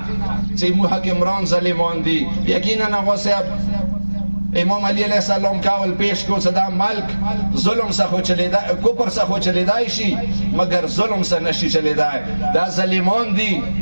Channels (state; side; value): inverted; both; correlation -1.00